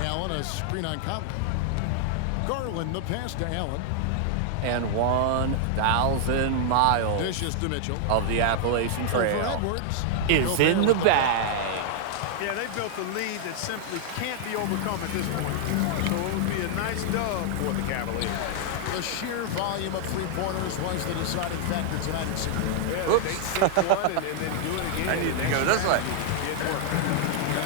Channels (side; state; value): both; different; correlation -0.01